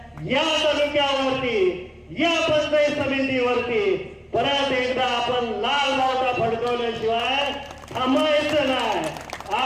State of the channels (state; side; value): identical; both; correlation 1.00